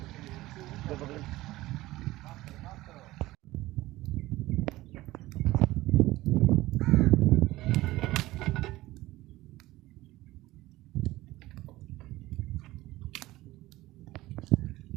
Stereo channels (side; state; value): left; quieter; 17.7 dB